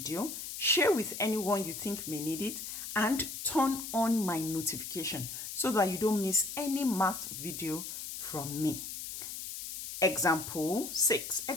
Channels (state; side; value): noise; left; hiss, 7 dB below the sound